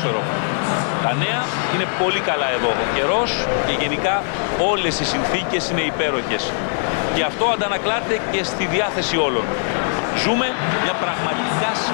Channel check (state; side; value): silent; right; digital silence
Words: Τα νέα είναι πολύ καλά εδώ. Ο καιρός και γενικά όλες οι συνθήκες είναι υπέροχες. Και αυτό αντανακλάται και στη διάθεση όλων. Ζούμε μια πραγματικά